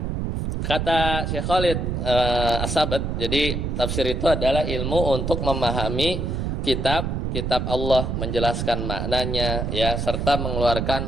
kata Syekh Khalid As-Sabat, jadi tafsir itu adalah ilmu untuk memahami kitab Allah, menjelaskan maknanya ya, serta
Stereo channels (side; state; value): right; noise; rumble, 1 dB below the sound